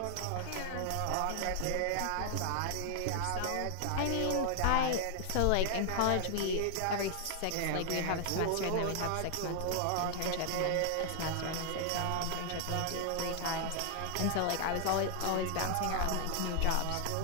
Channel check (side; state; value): both; different; correlation 0.00